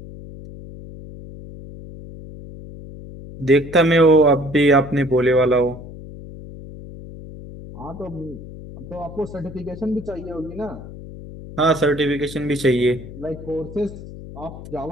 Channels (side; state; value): left; noise; hum, 14 dB below the sound